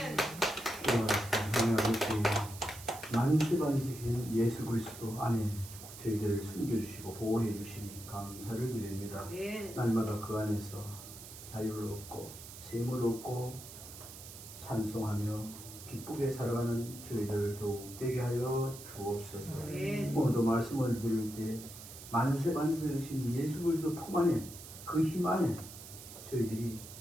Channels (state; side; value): noise; right; hiss, 14 dB below the sound